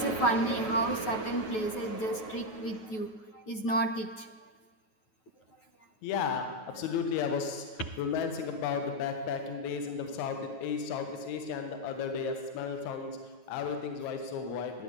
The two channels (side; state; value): right; late; 9.3 ms